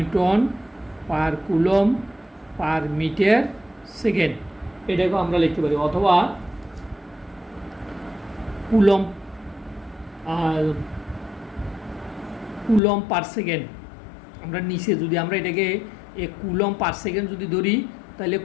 per coulomb per metre second, এটাকেও আমরা লিখতে পারি, অথবা কুলম পার সেকেন্ড। আমরা নিচে যদি আমরা এটাকে কুলম পার সেকেন্ড যদি ধরি তাহলে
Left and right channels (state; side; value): drops out; right; at 12.8 s